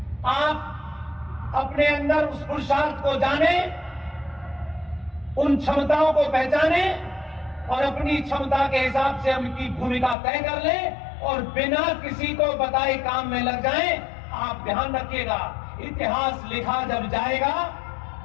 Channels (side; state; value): right; drops out; at 10.2 s